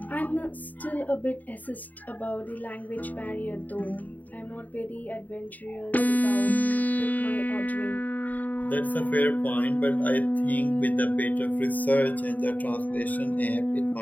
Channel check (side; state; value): right; late; 0.079 ms